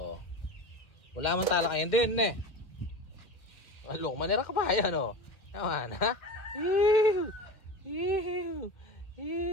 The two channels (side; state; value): right; late; 2.1 ms